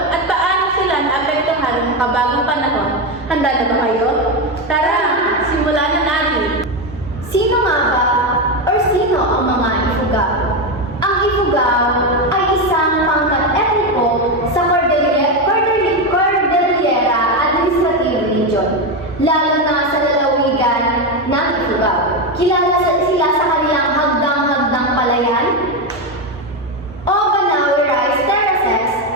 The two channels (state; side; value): normal; both; correlation 0.11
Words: at paano sila naapektuhan ng makabagong panahon. Handa na ba kayo? Tara, simulan na natin! Sino nga ba or sino ang mga Ifugao? Ang Ifugao ay isang pangkat etniko sa Cordillera Administrative Region, lalo na sa lalawigan ng Ifugao. Kilala sila sa kanilang hagdang-hagdang palayan o Banawe Rice Terraces